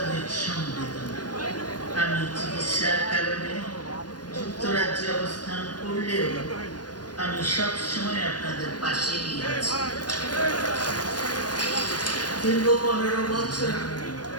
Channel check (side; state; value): right; late; 0.69 ms